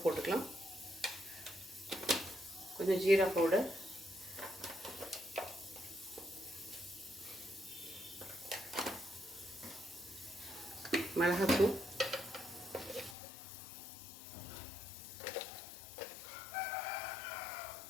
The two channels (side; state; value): right; drops out; at 13.2 s